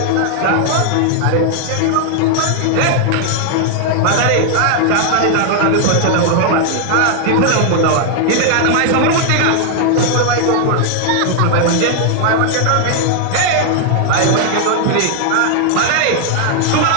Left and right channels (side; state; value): both; different; correlation 0.00